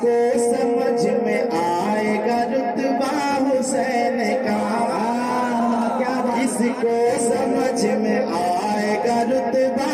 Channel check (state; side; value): identical; both; correlation 1.00